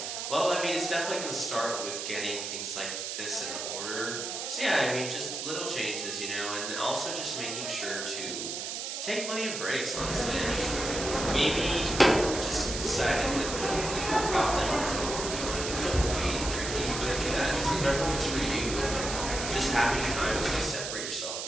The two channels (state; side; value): noise; right; hiss, 4 dB below the sound